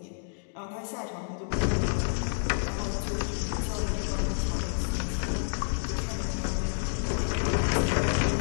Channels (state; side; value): silent; right; digital silence